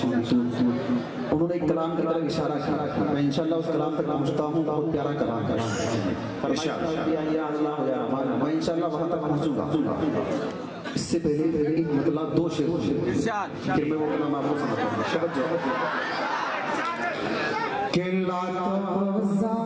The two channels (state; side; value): identical; both; correlation 1.00